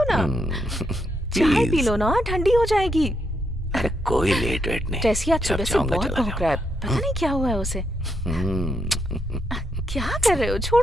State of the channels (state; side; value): normal; both; correlation 0.79